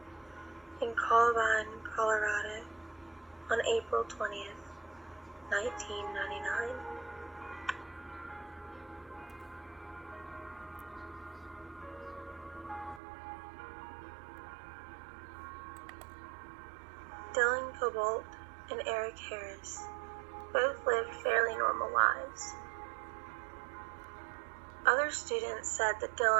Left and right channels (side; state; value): left; drops out; at 13.0 s